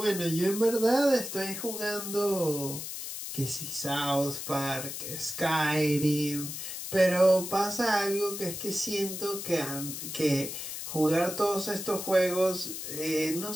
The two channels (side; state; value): left; noise; hiss, 7 dB below the sound